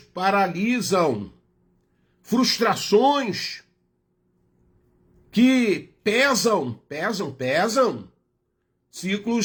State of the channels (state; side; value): identical; both; correlation 1.00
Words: frustrações que pesam,